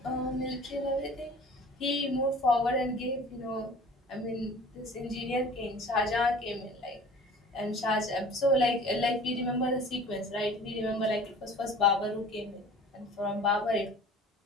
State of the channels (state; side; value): normal; both; correlation 0.45